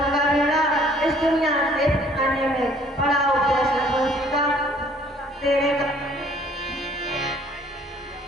का बेड़ा इस दुनिया से आने में बड़ा उपदेश का तेरे का।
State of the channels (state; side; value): normal; both; correlation 0.58